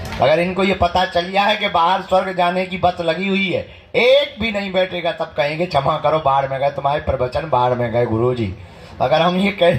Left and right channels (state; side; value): identical; both; correlation 1.00